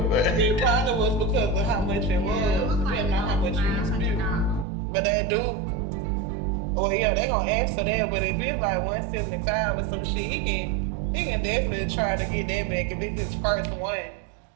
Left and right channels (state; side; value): drops out; left; at 4.7 s